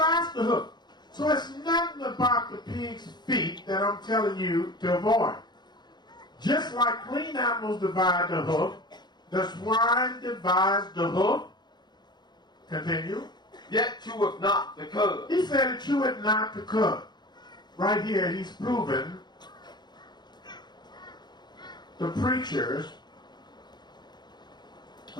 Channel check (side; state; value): right; late; 0.21 ms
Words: the hoof. So it's nothing about the pig's feet that I'm telling you to avoid. Just like clean animals divide the hoof, the swine divides the hoof. Continue. Yet cheweth not the cud. He said it cheweth not the cud. Right here he's proven the preachers